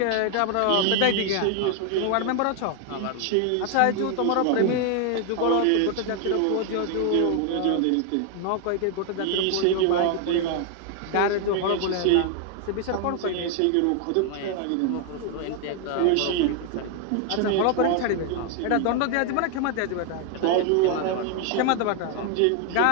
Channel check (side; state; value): both; different; correlation 0.00